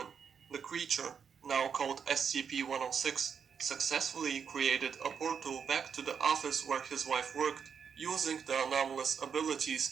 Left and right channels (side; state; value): left; quieter; 6.9 dB